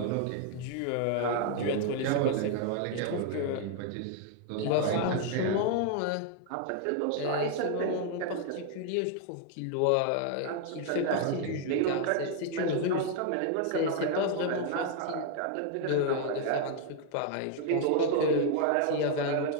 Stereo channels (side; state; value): both; different; correlation 0.00